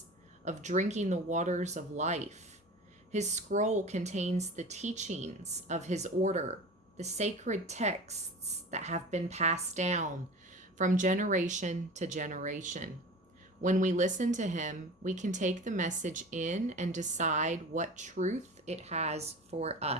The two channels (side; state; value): both; normal; correlation 0.36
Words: of drinking the waters of life. His scroll contains the teachings of his order, the sacred texts that have been passed down from generation to generation. When we listen to him, we can take the message in and decide what truth it has for